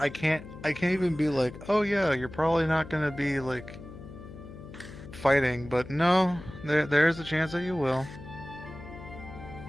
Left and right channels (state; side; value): noise; left; hum, 14 dB below the sound